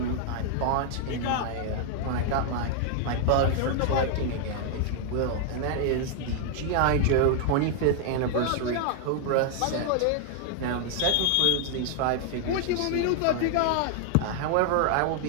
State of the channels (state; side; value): different; both; correlation 0.00